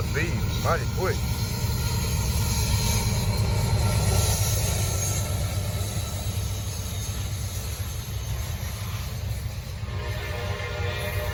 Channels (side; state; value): both; identical; correlation 1.00